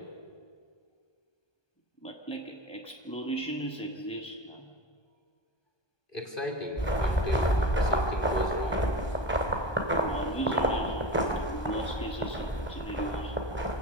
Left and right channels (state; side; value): late; right; 1.2 ms